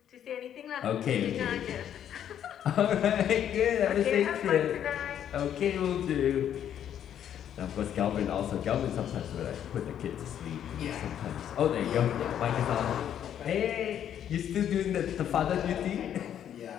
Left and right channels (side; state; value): right; quieter; 9.9 dB